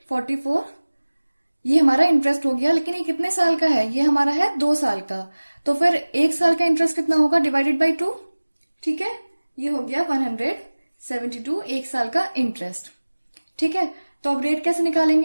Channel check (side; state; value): both; inverted; correlation -1.00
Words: ये हमारा इंटरेस्ट हो गया, लेकिन ये कितने साल का है, ये हमारा है 2 साल का। तो फिर 1 साल का इंटरेस्ट कितना होगा, डिवाइडेड बाई 2। ठीक है, ये हो गया 172 1 साल का इंटरेस्ट। ठीक है, तो अब रेट कैसे